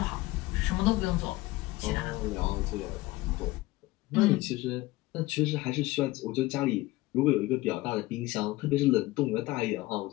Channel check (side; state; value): right; quieter; 19.2 dB